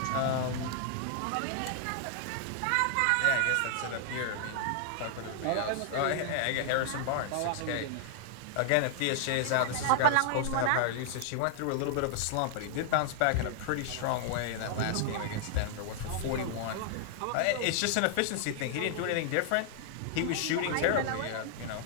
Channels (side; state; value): both; different; correlation 0.00